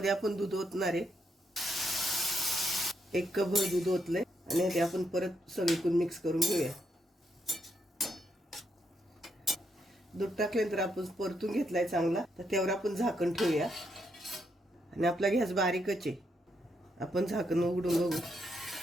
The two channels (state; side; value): normal; both; correlation 0.79